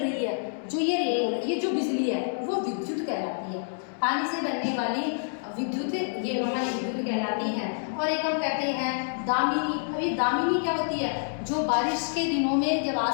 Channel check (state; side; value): silent; right; digital silence